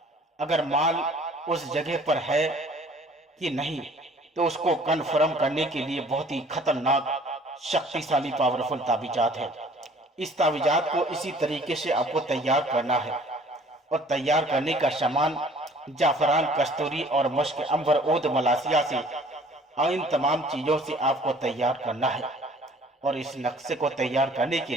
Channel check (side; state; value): both; normal; correlation 0.53